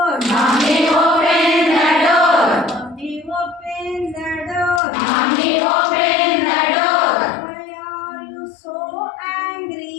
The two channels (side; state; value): right; drops out; at 4.8 s